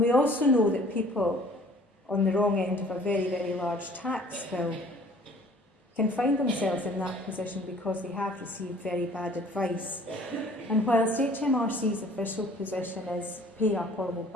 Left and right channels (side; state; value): both; normal; correlation 0.53